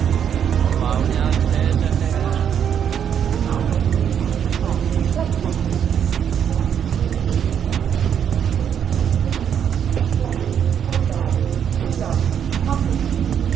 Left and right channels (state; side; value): quieter; left; 8.5 dB